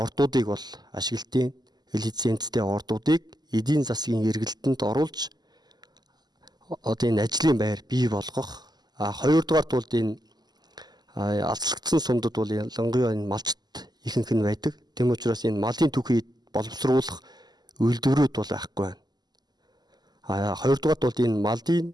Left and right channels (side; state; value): left; late; 0.20 ms